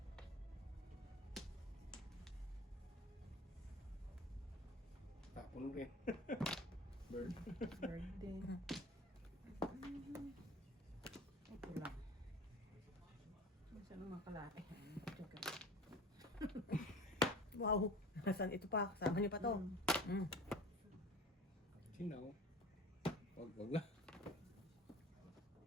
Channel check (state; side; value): normal; both; correlation 0.38